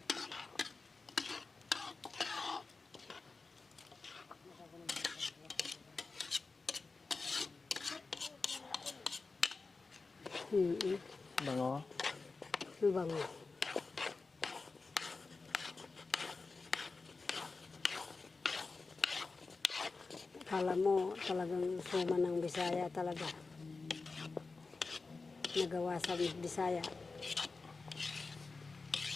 Bango. Ano bango? Kala mo talagang suman ng Bisaya talaga. Nagawa sa Bisaya.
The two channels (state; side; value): quieter; right; 4.0 dB